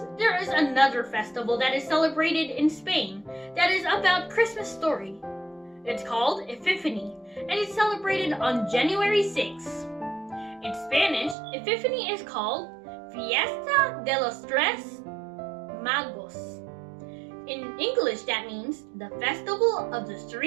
there is another festival that is celebrated in Spain that is about Christmas story. It's called Epiphany, and it's celebrated on January 6th. In Spanish, Epiphany is called Fiesta de los Tres Magos. In English, that means the Festival of the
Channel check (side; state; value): left; drops out; at 11.4 s